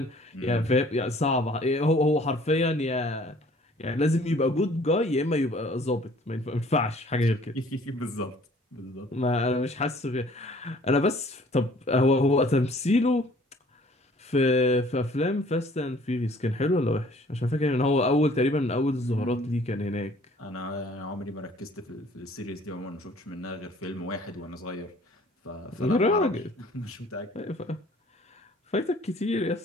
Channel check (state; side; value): normal; both; correlation 0.55